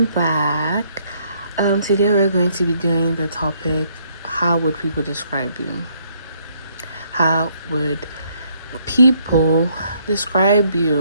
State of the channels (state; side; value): inverted; both; correlation -0.68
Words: back. Today we're going to be doing the topic, how would people describe you? How would people describe